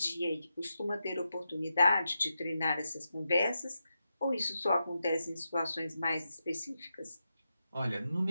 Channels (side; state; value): both; inverted; correlation -0.88